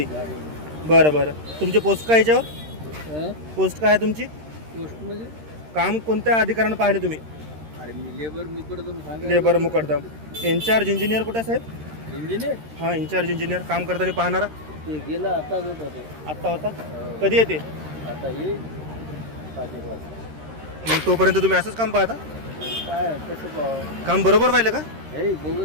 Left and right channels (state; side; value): late; left; 13 ms